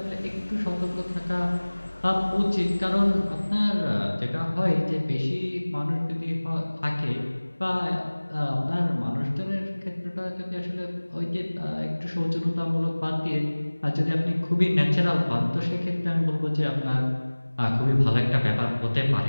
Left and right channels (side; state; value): both; inverted; correlation -1.00